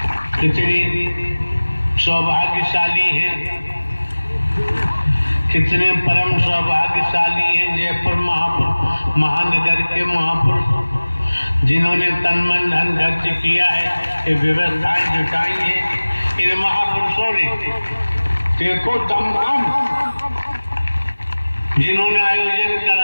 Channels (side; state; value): both; inverted; correlation -1.00